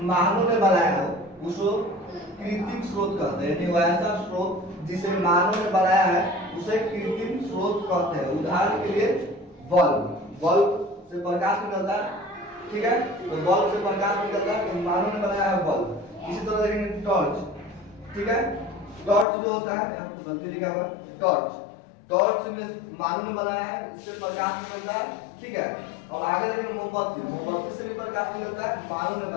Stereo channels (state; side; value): drops out; right; at 19.2 s